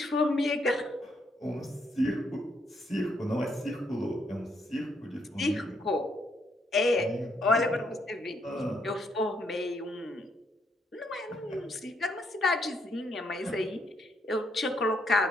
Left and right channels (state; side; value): normal; both; correlation 0.74